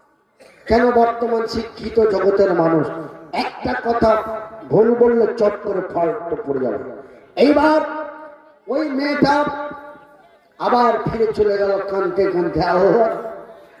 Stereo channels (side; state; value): both; identical; correlation 1.00